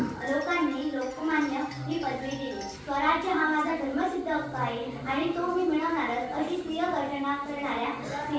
लोकांनी लोकमान्य ही पदवी दिली. स्वराज्य हा माझा धर्मसिद्ध हक्क आहे आणि तो मी मिळवणारच, अशी स्त्रिय गर्जना करणाऱ्या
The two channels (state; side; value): identical; both; correlation 1.00